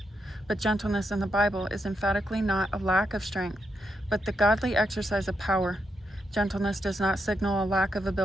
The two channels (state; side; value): normal; both; correlation 0.82